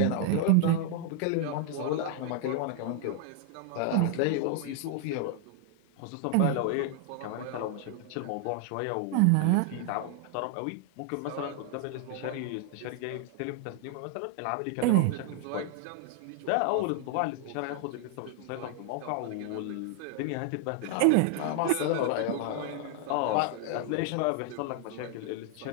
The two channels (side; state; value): both; different; correlation 0.00